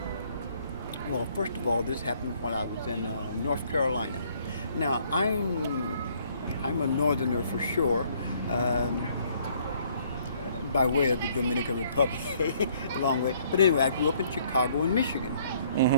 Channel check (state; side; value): inverted; both; correlation -0.64